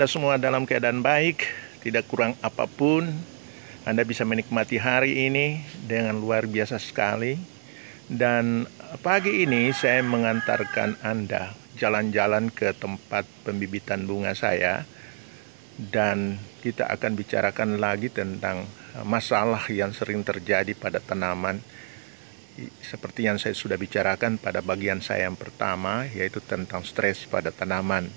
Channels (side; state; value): left; silent; 60 dB below the other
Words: semua dalam keadaan baik, tidak kurang apapun. Anda bisa menikmati hari ini dengan luar biasa sekali. Dan pagi ini saya mengantarkan Anda jalan-jalan ke tempat pembibitan bunga saya. Dan kita akan bicarakan lagi tentang masalah yang sering terjadi pada tanaman. Seperti yang saya sudah bicarakan pada bagian saya yang pertama, yaitu tentang stres pada tanaman.